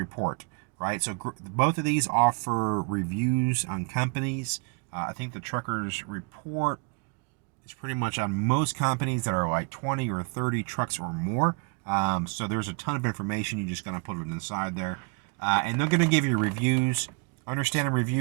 right? So both of these offer reviews on companies. I think the Trucker's Report is pretty much on most companies that are like 20 or 30 trucks or more. So there's a ton of information. You just gotta put it inside there, and they're gonna give you reviews. Understand a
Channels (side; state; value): left; quieter; 35.3 dB